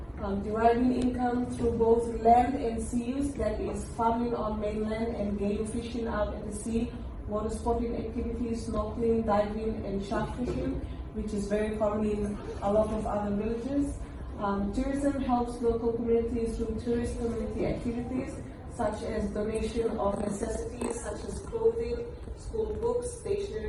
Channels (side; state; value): both; identical; correlation 1.00